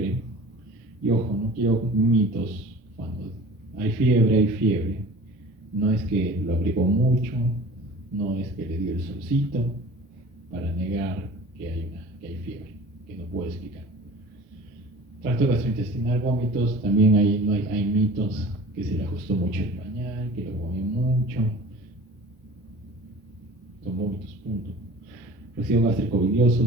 Y ojo, no quiero mitos. Cuando hay fiebre. No es que lo abrigó mucho, no es que le dio el solcito para negar que hay fiebre, que no puede explicar. Tracto gastrointestinal, vómitos, también hay mitos: que se le ajustó mucho el pañal, que lo comió mucho. Son vómitos, punto. Residuo gástrico bilioso,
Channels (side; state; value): both; normal; correlation 0.42